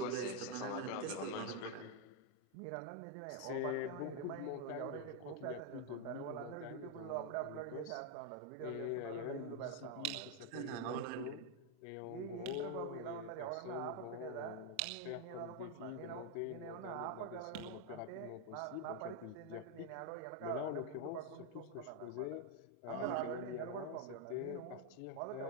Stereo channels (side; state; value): both; different; correlation 0.01